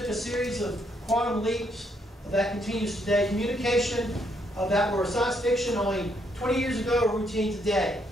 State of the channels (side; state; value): both; normal; correlation 0.73